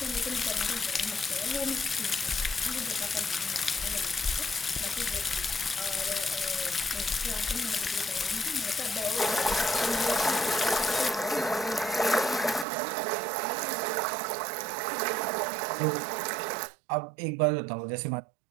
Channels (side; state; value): left; drops out; at 12.7 s